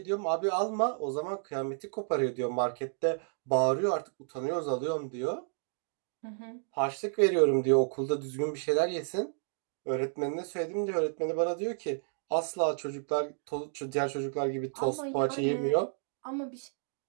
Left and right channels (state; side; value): silent; left; digital silence